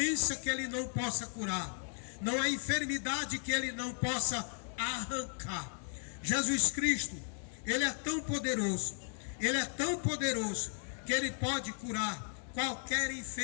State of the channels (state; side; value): silent; right; 54 dB below the other